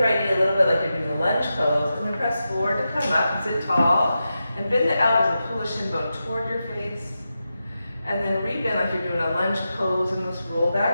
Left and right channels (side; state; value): both; inverted; correlation -0.90